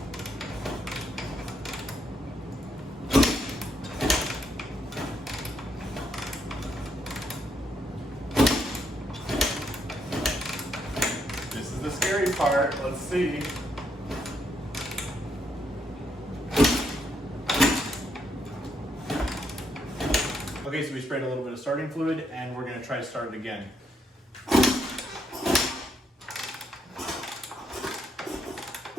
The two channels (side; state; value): both; normal; correlation 0.76